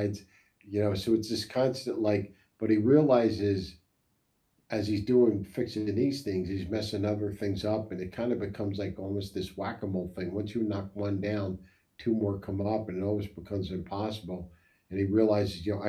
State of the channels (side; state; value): both; identical; correlation 1.00